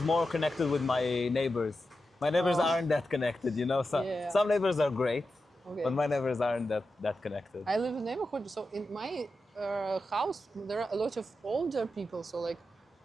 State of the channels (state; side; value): normal; both; correlation 0.90